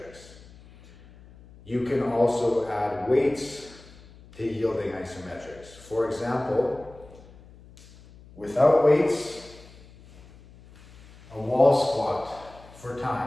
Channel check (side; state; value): left; noise; hum, 22 dB below the sound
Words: You can also add weights to yielding isometrics. For example, without weights, a wall squat for